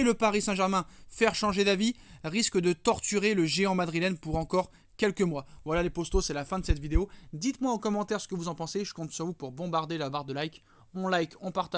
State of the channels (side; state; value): both; identical; correlation 1.00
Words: le Paris Saint-Germain faire changer d'avis risque de torturer le géant madrilène pour encore quelques mois. Voilà les postos, c'est la fin de cette vidéo. Dites-moi en commentaire ce que vous en pensez, je compte sur vous pour bombarder la barre de like. On like, on